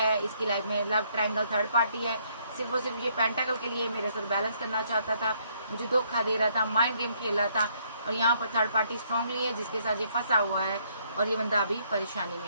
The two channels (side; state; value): both; inverted; correlation -0.69